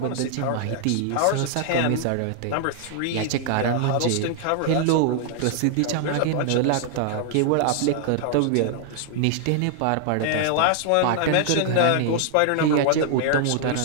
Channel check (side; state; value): both; different; correlation 0.00